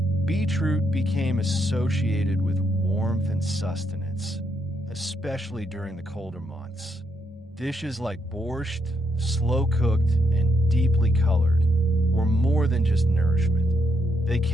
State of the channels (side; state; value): both; normal; correlation 0.77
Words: beetroot became associated with warmth and sustenance, especially during the colder months. Dishes like borscht, slow-cooked and deeply colored, were more than just nourishment. They